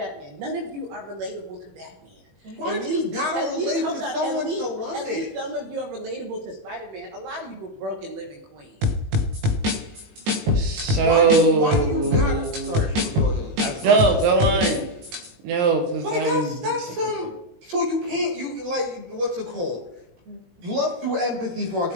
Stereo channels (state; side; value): late; left; 19 ms